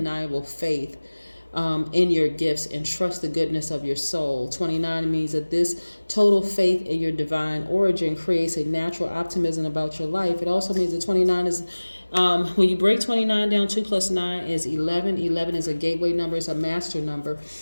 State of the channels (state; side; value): inverted; both; correlation -1.00